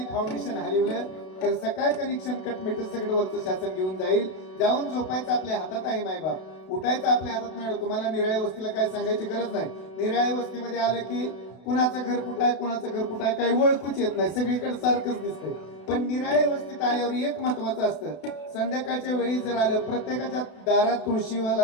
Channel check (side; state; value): right; late; 32 ms